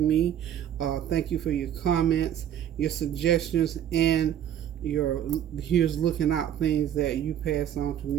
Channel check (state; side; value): quieter; left; 10.3 dB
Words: me. Thank you for your comments, your suggestions, and your here's looking out things that you pass on to